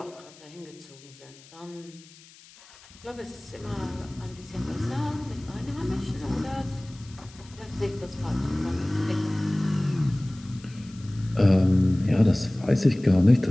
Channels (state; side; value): noise; left; hiss, 23 dB below the sound